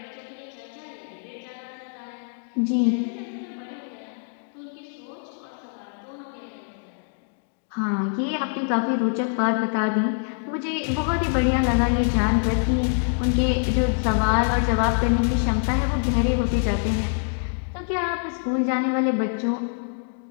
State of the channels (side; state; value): right; silent; 62 dB below the other